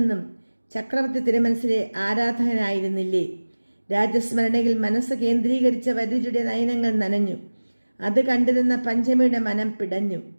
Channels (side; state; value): both; inverted; correlation -1.00